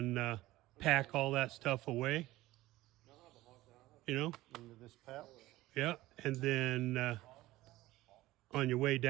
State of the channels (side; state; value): left; quieter; 17.3 dB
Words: pack all that stuff away. You know, Into this pouch. yeah, and then on your way